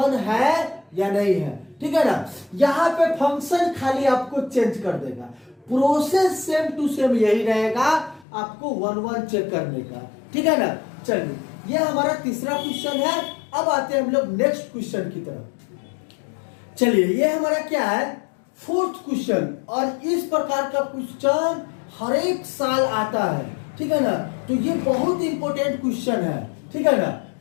है या नहीं है, ठीक है ना। यहाँ पे फंक्शन खाली आपको चेंज कर देगा, प्रोसेस सेम टू सेम यही रहेगा, आपको 1 1 चेक करने का, ठीक है ना। चलिए ये हमारा तीसरा क्वेश्चन है। अब आते हैं हम लोग नेक्स्ट क्वेश्चन की तरफ। चलिए ये हमारा क्या है, 4th क्वेश्चन, और इस प्रकार का क्वेश्चन हर एक साल आता है, ठीक है ना। तो ये बहुत इंपॉर्टेंट क्वेश्चन है, ठीक है ना।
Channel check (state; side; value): drops out; right; at 8.2 s